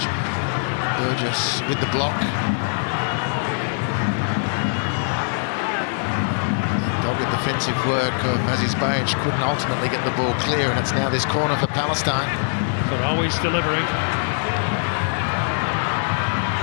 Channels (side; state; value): right; silent; 64 dB below the other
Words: Burgess with the block. Dogged defensive work of Aziz Bajic couldn't ultimately get the ball clear, and it's now this corner for Palestine. Farawi's delivering.